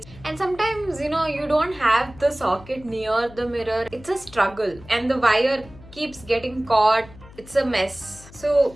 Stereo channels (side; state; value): left; noise; hum, 20 dB below the sound